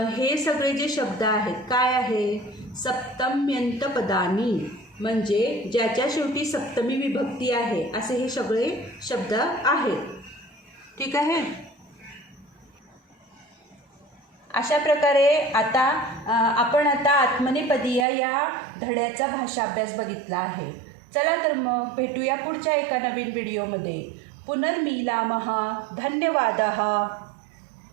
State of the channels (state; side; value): drops out; left; at 18.1 s